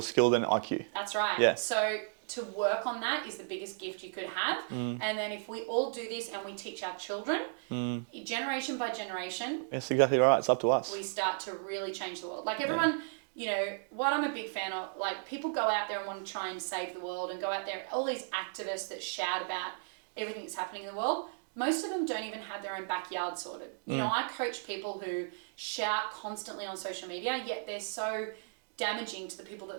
skill than IQ. That's right. Yeah. So to work on that is the biggest gift you could have. And then if we all do this and we teach our children, generation by generation. That's exactly right. It's up to us. We start to really change the world. Like everyone, you know, what I'm a big fan of, like people go out there and want to try and save the world and go out there, all these activists that shout about everything that's happening in the world. Most of them don't even have their own backyard sorted. You know, I coach people who shout constantly on social media, yet they're so damaging to the people that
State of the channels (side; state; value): left; silent; digital silence